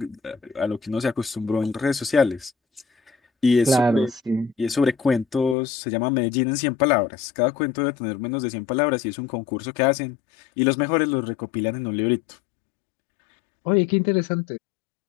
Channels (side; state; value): right; drops out; at 5.6 s